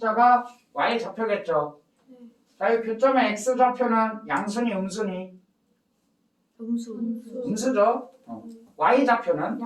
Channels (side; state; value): both; identical; correlation 1.00